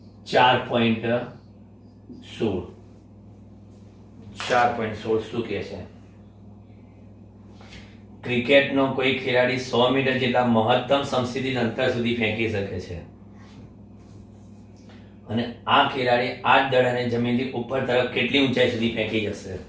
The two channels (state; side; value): identical; both; correlation 1.00